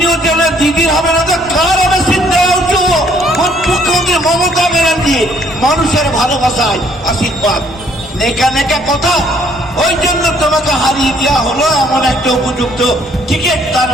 উঠে দিদির হবে না, তো কার হবে সিদ্ধারা উঁচু? মুখ্যমন্ত্রী মমতা ব্যানার্জি মানুষের ভালোবাসায় আশীর্বাদ, নেকা নেকা কথা। ওই জন্য তোমাকে হারিয়ে দেওয়া হলো এমন একটা উপযুক্ত ক্রিকেট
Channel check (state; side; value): normal; both; correlation 0.64